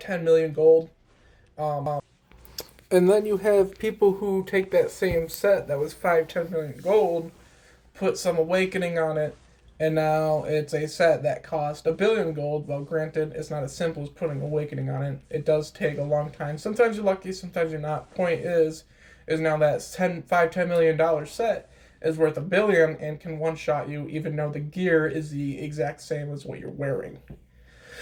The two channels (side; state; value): both; identical; correlation 1.00